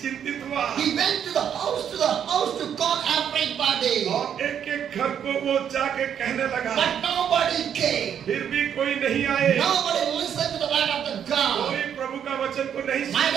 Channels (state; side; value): quieter; left; 8.7 dB